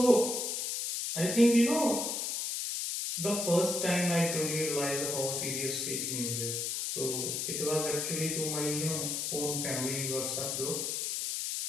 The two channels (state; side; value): noise; left; hiss, 1 dB below the sound